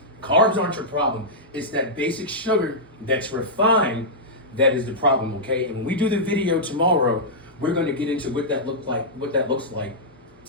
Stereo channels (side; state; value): both; normal; correlation -0.10